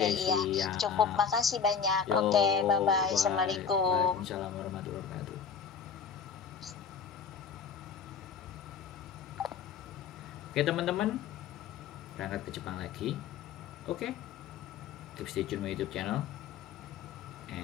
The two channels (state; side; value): quieter; right; 6.6 dB